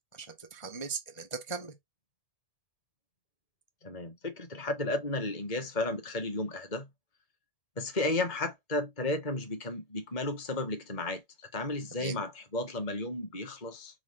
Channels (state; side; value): late; right; 1.7 ms